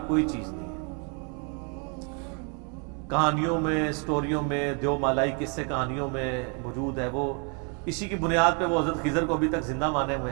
کوئی چیز نہیں ہے. کہانیوں میں، سٹوریوں میں، دیو مالائی قصے کہانیوں میں موجود ہے. وہ اسی کی بنیاد پہ وہ حضرت خضر کو ابھی تک زندہ مانے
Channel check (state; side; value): quieter; left; 37.1 dB